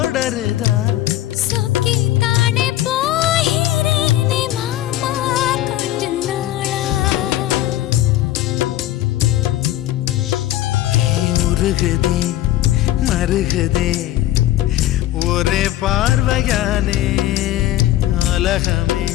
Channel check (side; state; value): right; quieter; 14.4 dB